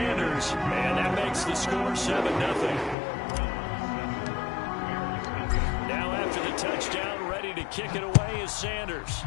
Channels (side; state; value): right; drops out; at 3.0 s